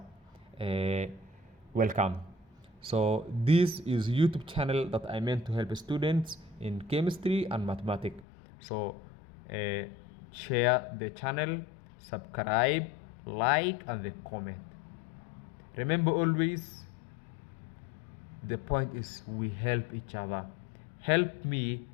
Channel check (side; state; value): right; drops out; at 8.2 s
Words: Welcome. So this is YouTube channel that I meant to help students in chemistry and mathematics. So share the channel, subscribe, like, and the comment. Remember always, the point is we help each other. Help me,